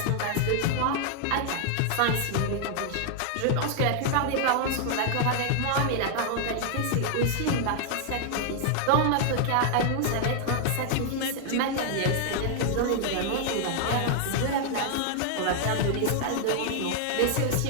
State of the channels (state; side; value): different; both; correlation 0.00